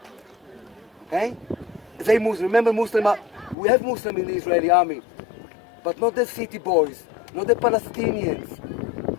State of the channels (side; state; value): right; drops out; at 3.6 s